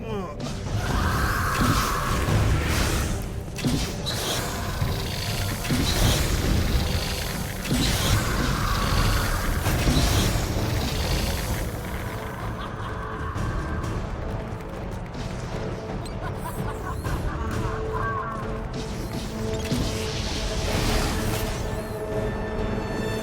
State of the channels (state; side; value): identical; both; correlation 1.00